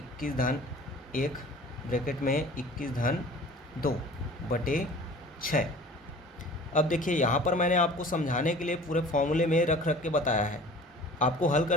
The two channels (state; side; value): normal; both; correlation 0.45